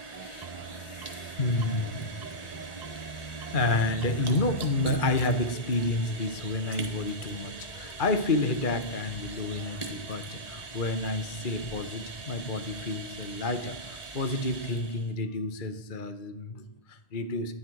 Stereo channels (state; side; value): late; right; 1.4 ms